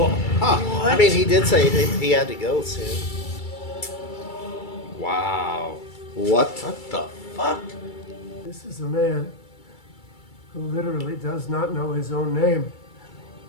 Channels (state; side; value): late; right; 2.3 ms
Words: I mean, he did say he had to go soon. Wow. What? What the fuck? This is a man who literally does not know his own name.